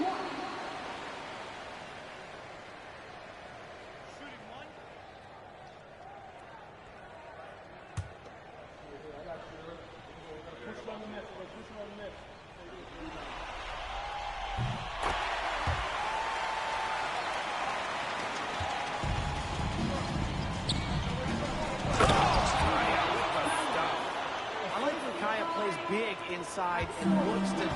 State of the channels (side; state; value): both; identical; correlation 1.00